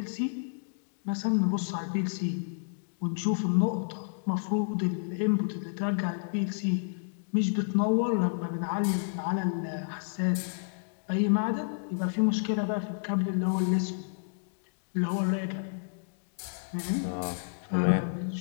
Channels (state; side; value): silent; right; digital silence